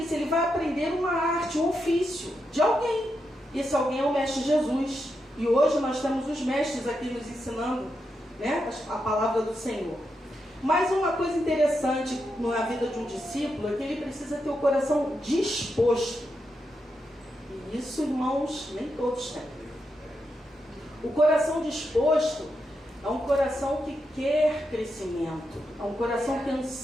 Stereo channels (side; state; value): both; normal; correlation 0.85